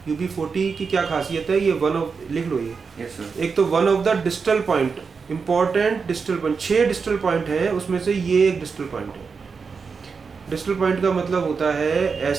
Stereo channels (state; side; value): quieter; left; 5.3 dB